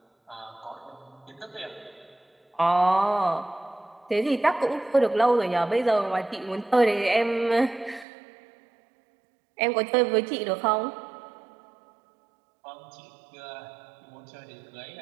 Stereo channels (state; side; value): drops out; left; at 8.1 s